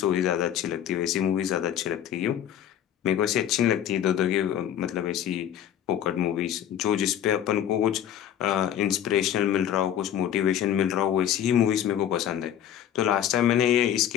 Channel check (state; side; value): quieter; right; 10.3 dB